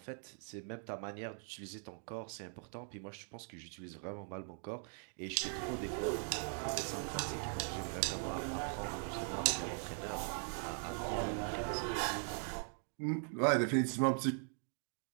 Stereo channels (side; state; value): left; silent; 51 dB below the other